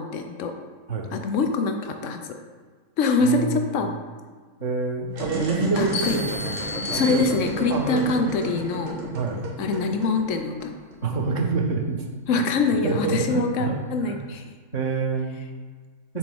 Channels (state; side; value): late; right; 3.6 ms